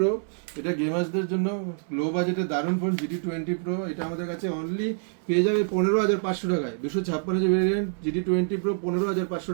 এটা গেমার্সদের জন্য লো বাজেটে দারুণ ফোন। GT20 Pro এটা আমাদের কাছে অনলি পেয়ে যাবে 15,500 টাকায়। 256GB ভেরিয়েন্ট GT20 Pro 15,500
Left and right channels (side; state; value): left; silent; 59 dB below the other